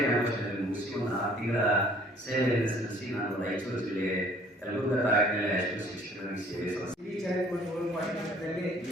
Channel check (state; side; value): normal; both; correlation 0.56